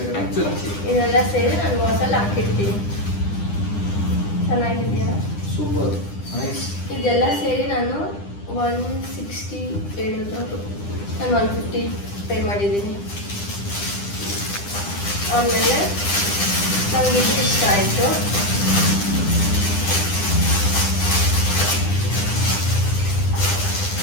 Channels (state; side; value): late; right; 9.9 ms